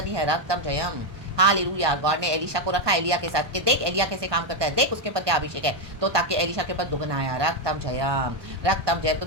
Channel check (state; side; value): late; left; 1.2 ms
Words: है, रक्तम जयम, हालेलुया। गॉड ने एलिशा को रखा एलिया के साथ, कि देख एलिया कैसे काम करता है, देख उसके ऊपर क्या अभिषेक है, तो ताकि एलिशा के ऊपर दुगना आया, रक्तम जयम, रक्तम जयम। तो